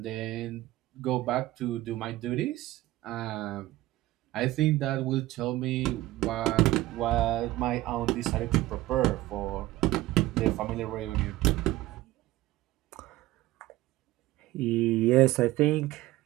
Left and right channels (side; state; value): left; quieter; 16.9 dB